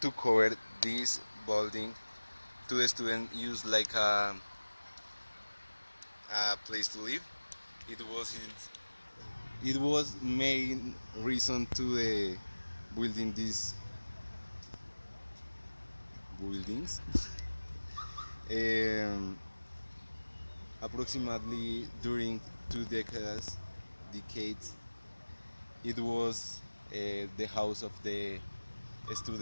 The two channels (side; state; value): both; inverted; correlation -1.00